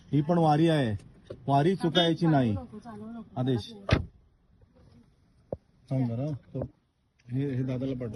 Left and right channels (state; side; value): identical; both; correlation 1.00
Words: ही पण वारी आहे, वारी चुकायची नाही. आदेश सांग बरं, हे दादाला